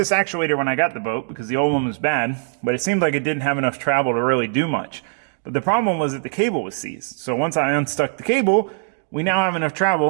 actuator when I got the boat because the old one was bad, but it seemed like it didn't have enough travel to really do much. But the problem was that the cable was seized. So once I unstuck the cable, we now have enough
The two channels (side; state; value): left; silent; digital silence